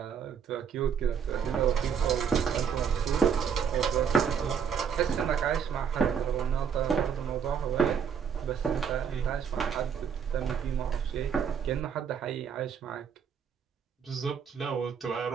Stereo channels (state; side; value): quieter; left; 7.3 dB